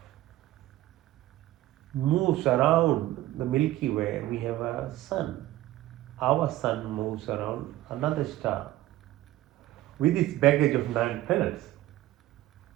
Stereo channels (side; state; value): left; quieter; 15.5 dB